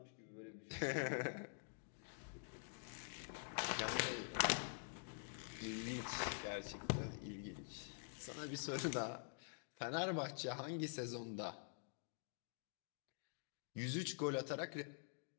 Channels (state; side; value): silent; right; digital silence